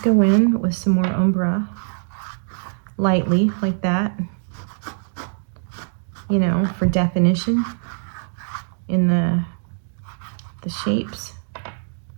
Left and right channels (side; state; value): left; silent; digital silence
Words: go in with some more Umbra, lightly, like that, you know, for definition in the shapes.